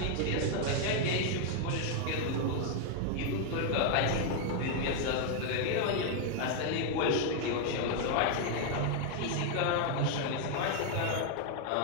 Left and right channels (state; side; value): different; both; correlation 0.00